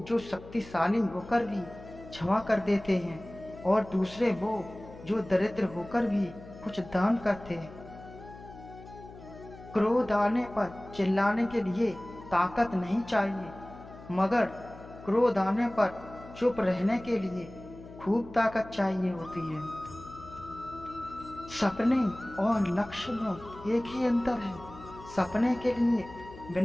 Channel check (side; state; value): left; noise; hum, 17 dB below the sound